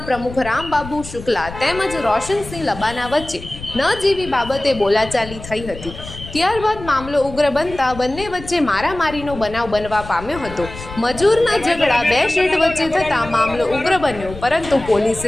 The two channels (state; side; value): noise; left; rumble, 13 dB below the sound